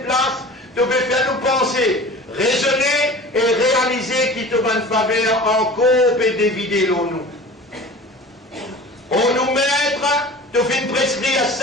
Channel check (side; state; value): both; normal; correlation 0.39